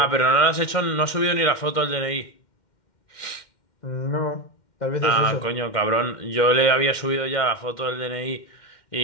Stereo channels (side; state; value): right; late; 2.1 ms